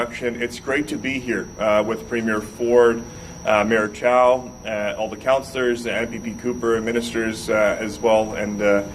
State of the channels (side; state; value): both; identical; correlation 1.00